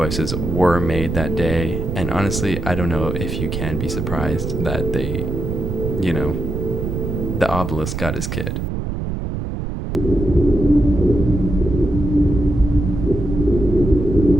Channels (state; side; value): noise; right; rumble, 4 dB below the sound